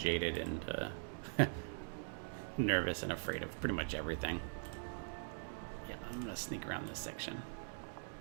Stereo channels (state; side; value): silent; left; digital silence